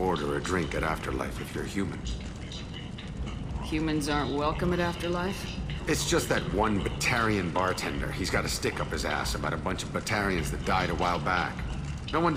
a drink at Afterlife if you're human. Humans aren't welcome at Afterlife? It's just that one Batarian bartender. He's got a stick up his ass about a bunch of Batarians that died a while back. No one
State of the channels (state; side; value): identical; both; correlation 1.00